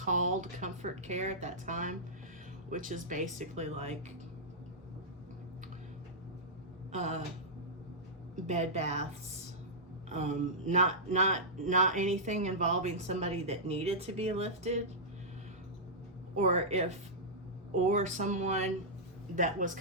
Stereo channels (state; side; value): normal; both; correlation -0.12